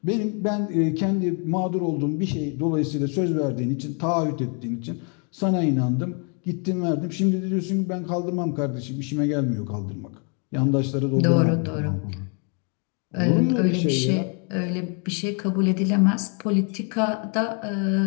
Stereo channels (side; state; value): right; quieter; 38.0 dB